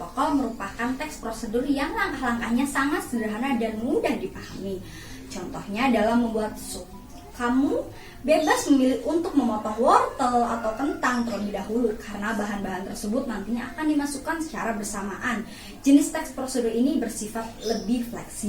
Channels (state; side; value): identical; both; correlation 1.00